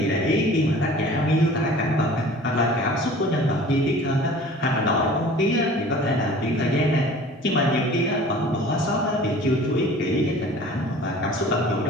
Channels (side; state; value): both; normal; correlation 0.45